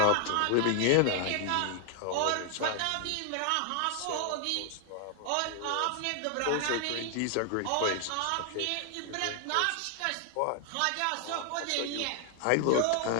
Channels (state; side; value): different; both; correlation 0.00